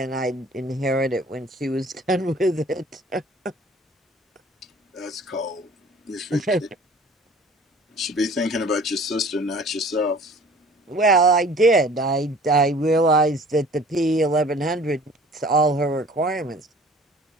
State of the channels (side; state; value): both; normal; correlation 0.49